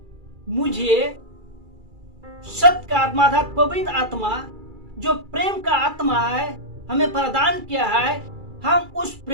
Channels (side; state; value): left; late; 2.3 ms